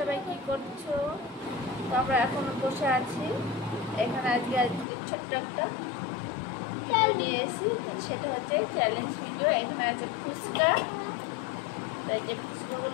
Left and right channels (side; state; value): right; drops out; at 4.9 s